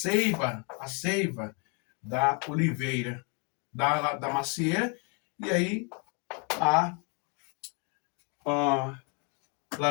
da oliveira, da macieira, e aí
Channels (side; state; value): right; quieter; 35.4 dB